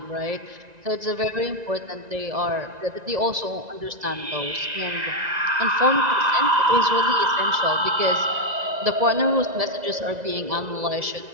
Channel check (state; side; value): late; left; 1.9 ms